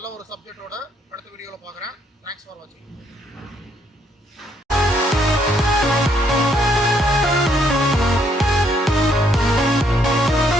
ஒரு சப்ஜெக்டோட அடுத்த வீடியோவில் பார்க்குறேன். தேங்க்ஸ் ஃபார் வாட்சிங்.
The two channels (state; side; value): normal; both; correlation 0.70